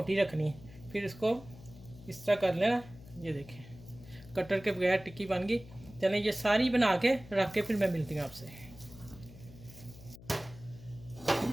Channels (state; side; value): noise; left; hum, 18 dB below the sound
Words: रखनी है। फिर इसको इस तरह कर लेना। ये देखें कटर के बगैर टिक्की बन गई। चलें ये सारी बना के रख के फिर मैं मिलती हूँ आपसे।